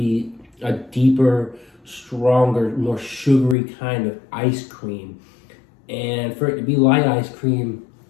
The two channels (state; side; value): drops out; right; at 3.6 s